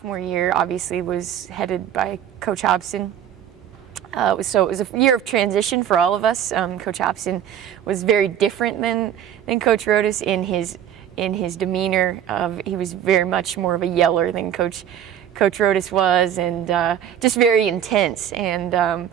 year obviously was headed by Coach Hobson. So it was a year of transition for all of us. Coach Hobson was very different than Coach Rodas in his demeanor. He was very much more of a yeller than Coach Rodas was, and just very intense. And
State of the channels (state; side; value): quieter; left; 10.0 dB